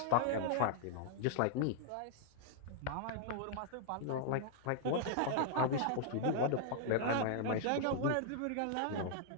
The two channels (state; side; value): different; both; correlation -0.01